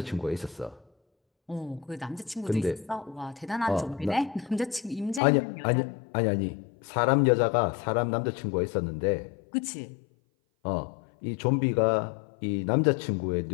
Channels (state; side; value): drops out; right; at 5.2 s